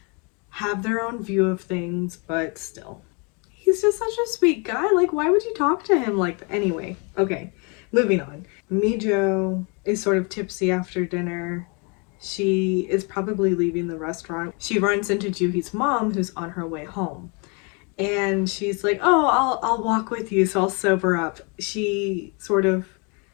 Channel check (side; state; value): right; quieter; 33.1 dB